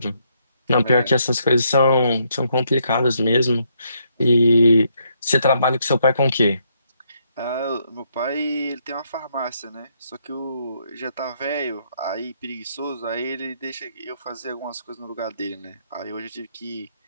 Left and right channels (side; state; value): both; inverted; correlation -0.74